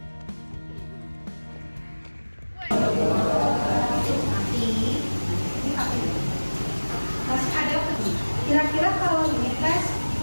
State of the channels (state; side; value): inverted; both; correlation -1.00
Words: Masih ada kira-kira kalau ini tes